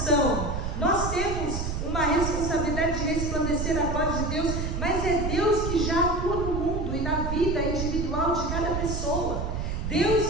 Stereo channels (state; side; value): noise; right; rumble, 2 dB below the sound